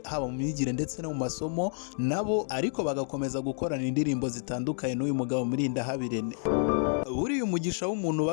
haba mu myigire ndetse no mu masomo nabo, ariko bagakomeza gukorana indirimbo zitandukanye n'uyu mugabo Murindahabirene. Buriya umugisha w'umuntu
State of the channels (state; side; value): silent; right; 58 dB below the other